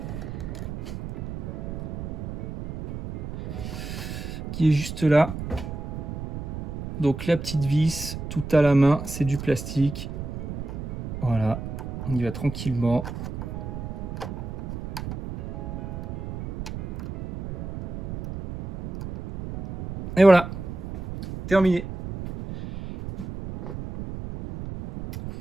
qui est juste là. Donc la petite vis, tout à la main, c'est du plastique. Voilà, on y va tranquillement. Et voilà, terminé.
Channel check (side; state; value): right; noise; rumble, 8 dB below the sound